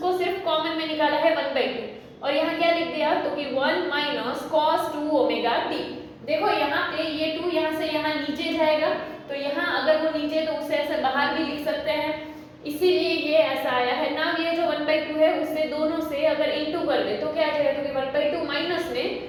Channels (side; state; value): both; identical; correlation 1.00